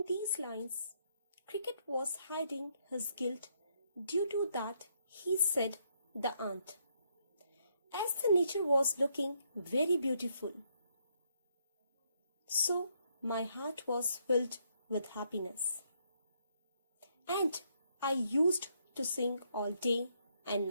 these lines, Cricket was hiding his guilt due to that he said the aunt, as the nature was looking very beautiful. So my heart was filled with happiness, and I used to sing all day and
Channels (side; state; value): both; inverted; correlation -0.73